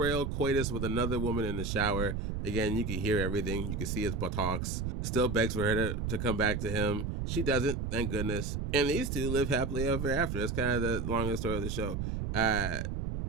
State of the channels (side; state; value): right; noise; rumble, 2 dB below the sound